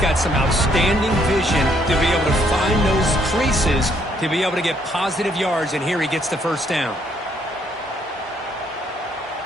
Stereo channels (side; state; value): both; normal; correlation 0.69